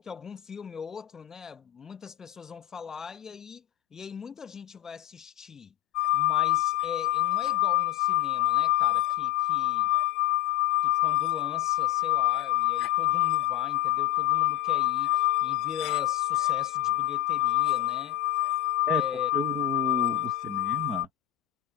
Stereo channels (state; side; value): quieter; right; 13.5 dB